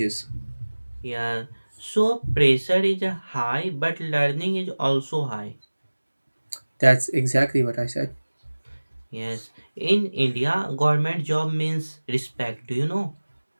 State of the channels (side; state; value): both; inverted; correlation -1.00